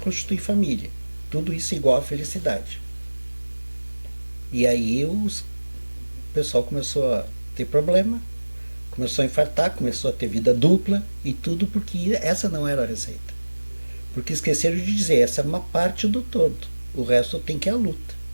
família. Tudo isso é igual à felicidade. E aí o pessoal começou a ter problema, começou a infartar, começou a ter vida dupla e tudo porque essa não era a receita. Porque esqueceram de dizer, essa é uma parte do todo. O resto tem que ir à luta.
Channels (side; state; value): both; inverted; correlation -1.00